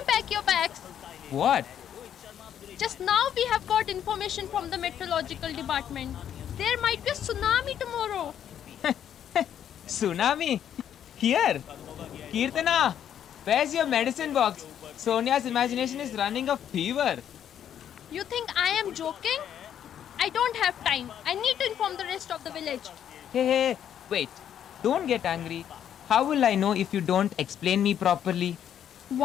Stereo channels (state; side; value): quieter; right; 9.6 dB